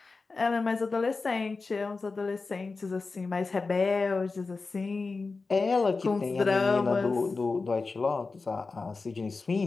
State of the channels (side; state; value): right; quieter; 4.0 dB